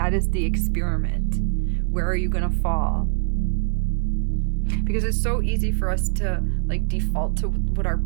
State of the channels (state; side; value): silent; left; 60 dB below the other